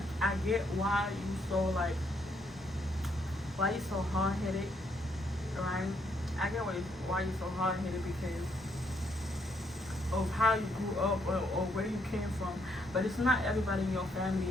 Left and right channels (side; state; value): both; normal; correlation 0.73